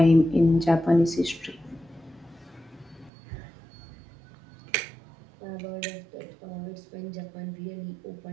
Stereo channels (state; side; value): drops out; left; at 3.1 s